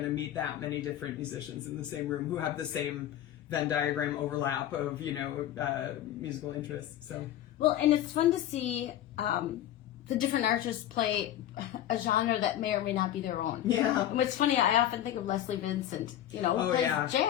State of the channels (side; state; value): right; quieter; 12.0 dB